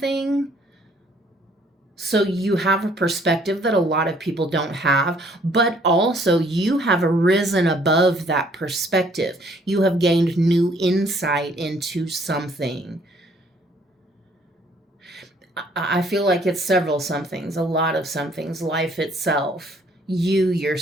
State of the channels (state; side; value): normal; both; correlation 0.62